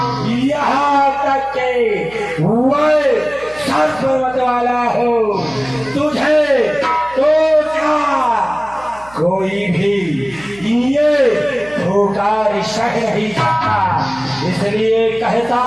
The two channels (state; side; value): noise; right; hum, 23 dB below the sound